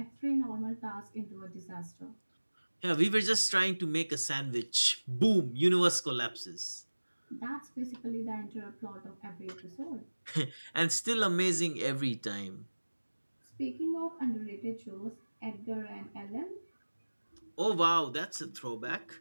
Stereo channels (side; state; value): both; inverted; correlation -1.00